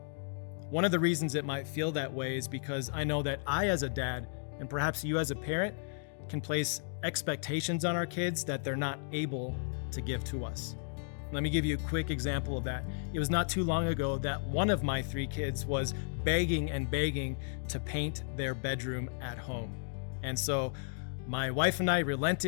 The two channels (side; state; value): right; silent; digital silence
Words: One of the reasons it might feel that way is because I know that I, as a dad, and perhaps you as a parent, can place expectations on our kids that they're not able to give to us. Let me give you a quick example of that. It was not too long ago that one of my 3 kids was begging to paint their bedroom at home. And so my wife and I